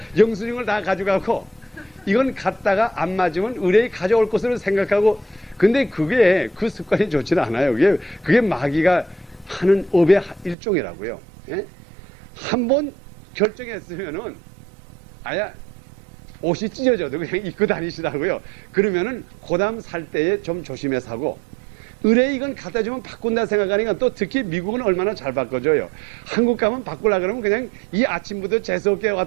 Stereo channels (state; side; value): drops out; left; at 10.6 s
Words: 영수증을 다 가져가고 이건 갔다가 안 맞으면 의뢰에 가져올 것으로 생각하고 근데 그게 그 습관이 좋지는 않아요. 그게 마귀가 하는 업의 일종이라고요. 예? 한번 결정했으면은 아야 옷이 찢어져도 그냥 입고 다니시라고요. 그러면은 고담 살 때에 좀 조심해 사고 의뢰 이건 갖다 주면 바꾼다 생각하니까 또 특히 미국은 얼마나 잘 바꿔줘요. 한국 가면 바꾸려 그러면 그냥 이 아침부터 재수없게